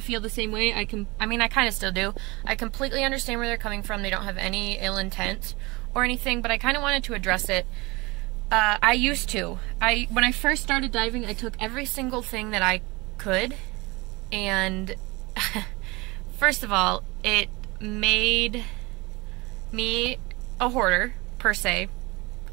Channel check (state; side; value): quieter; left; 24.1 dB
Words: feel the same way. I mean, I kind of still do. I completely understand where they're coming from. They don't have any ill intent or anything, but I kind of wanted to address it. I used to. When I first started diving, I took every single thing that I could, and first of all, it made me a hoarder, per se.